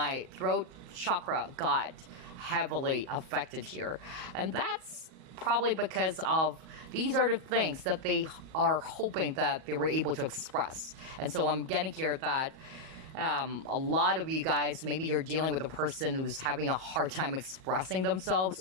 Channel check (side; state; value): left; late; 37 ms